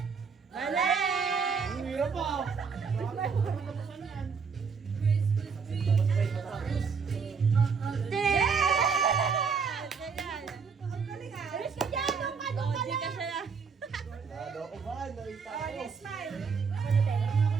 Mali! Ang hirap pa! Alis ka dyan! Doon ka, doon ka Di ka lang! siya na. Nado ko ba? Nakita Oh, ko. smile.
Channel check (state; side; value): quieter; left; 5.6 dB